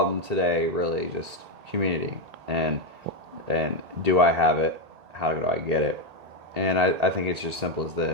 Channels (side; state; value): left; late; 1.8 ms